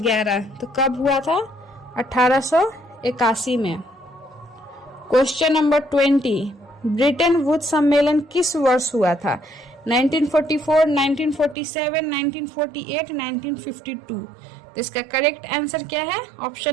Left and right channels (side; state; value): left; drops out; at 11.6 s